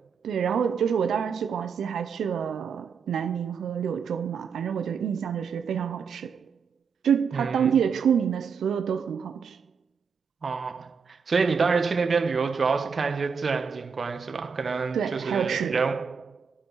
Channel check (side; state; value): left; quieter; 6.1 dB